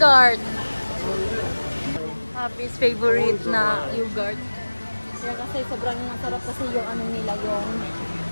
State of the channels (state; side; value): inverted; both; correlation -1.00